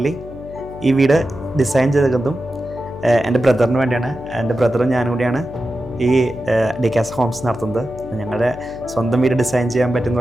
ഈ വീട് ഡിസൈൻ ചെയ്തതും എൻ്റെ ബ്രദറിന് വേണ്ടിയാണ്. എൻ്റെ ബ്രദറും ഞാനും കൂടിയാണ് ഈ ഡിക്കാസ് ഹോംസ് നടത്തുന്നത്. ഞങ്ങളുടെ സ്വന്തം വീട് ഡിസൈൻ ചെയ്യാൻ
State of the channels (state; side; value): noise; left; hum, 14 dB below the sound